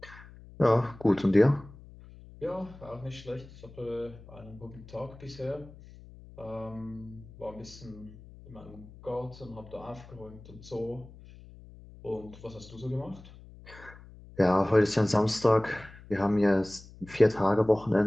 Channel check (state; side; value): noise; left; hum, 19 dB below the sound